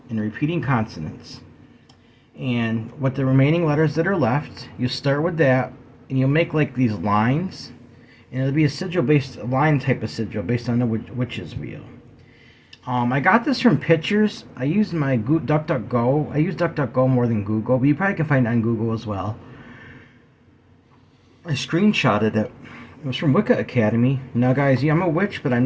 and the repeating consonants. And with the remaining letters that are left, you start with that, and you'll make like these lines, and it'll be a line type of sigil based on the witch's wheel. I got this from pictures. I used my DuckDuckGo. I use DuckDuckGo more than Google, but you probably can find it on Google as well. I screenshotted it. It was from Wicca Academy. Now, guys, I'm a witch, but I'm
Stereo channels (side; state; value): both; identical; correlation 1.00